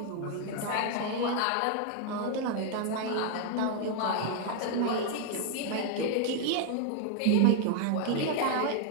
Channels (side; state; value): both; different; correlation 0.00